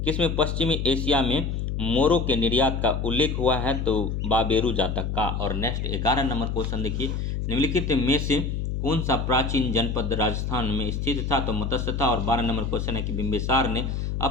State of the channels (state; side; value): noise; left; hum, 2 dB below the sound